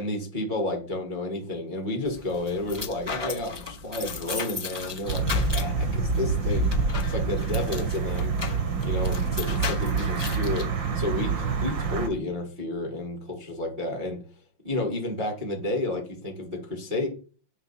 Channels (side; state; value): left; late; 5.7 ms